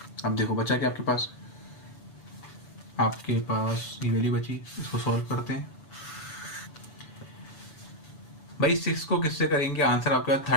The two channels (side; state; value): right; late; 6.5 ms